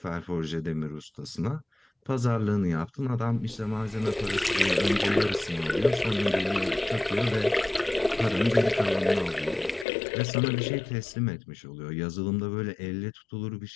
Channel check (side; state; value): right; drops out; at 9.9 s